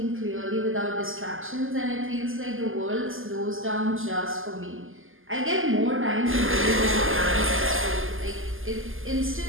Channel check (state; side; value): late; left; 0.59 ms